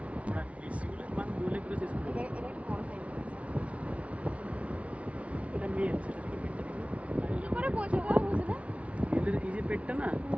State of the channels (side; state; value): left; late; 0.064 ms